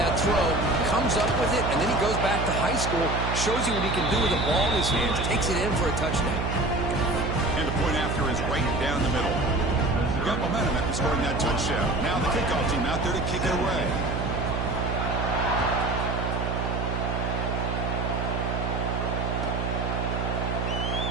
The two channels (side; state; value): right; noise; hum, 1 dB below the sound